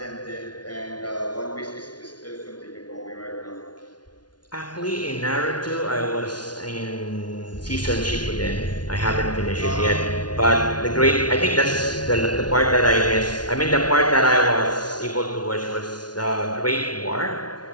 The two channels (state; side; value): late; right; 0.70 ms